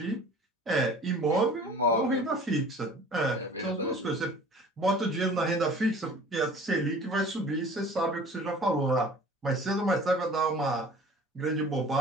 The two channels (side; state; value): both; normal; correlation 0.46